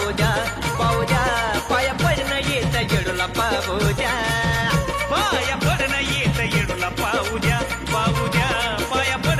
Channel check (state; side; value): identical; both; correlation 1.00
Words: द्या पाहू द्या पाया पडणं येत येडूला पाहू द्या पाया पडणं येत येडूला पाहू द्या पाहू द्या पाया